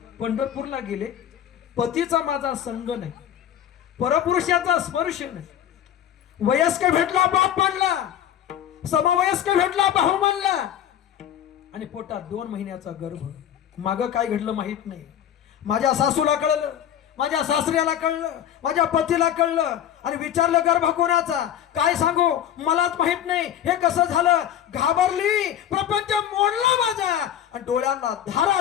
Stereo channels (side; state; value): right; quieter; 10.4 dB